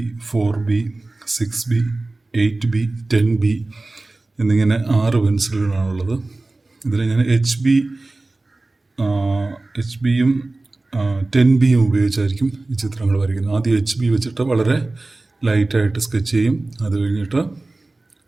4B, 6B, 8B, 10B എന്നിങ്ങനെ 6 പെൻസിലുകളാണുള്ളത്. ഇതിൽ ഞാൻ HBയും 10Bയും ഉപയോഗിച്ചായിരിക്കും ഈ ചിത്രങ്ങൾ വരയ്ക്കുന്നത്. ആദ്യം HB വെച്ചിട്ട് വളരെ ലൈറ്റായിട്ട് സ്കെച്ച് ചെയ്യും. അത് കഴിഞ്ഞിട്ട്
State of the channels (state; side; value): quieter; left; 3.1 dB